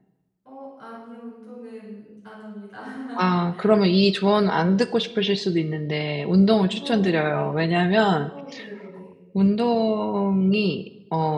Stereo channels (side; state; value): both; identical; correlation 1.00